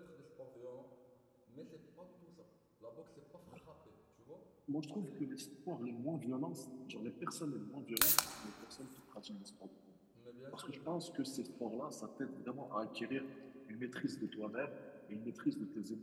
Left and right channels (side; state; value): both; identical; correlation 1.00